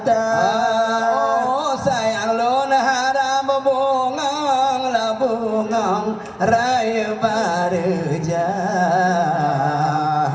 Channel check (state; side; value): identical; both; correlation 1.00